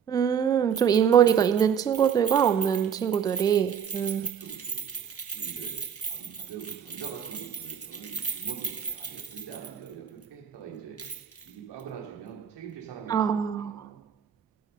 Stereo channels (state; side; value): quieter; left; 8.0 dB